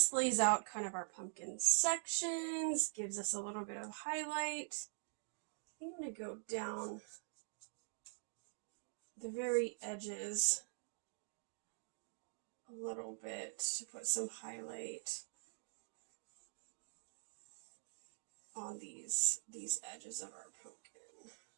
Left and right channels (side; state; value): left; silent; digital silence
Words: lays out kind of our pumpkin sections, gives us a little bit of highlight. I'm going to go down the very edges a little bit to put some highlight on these edges of our pumpkin.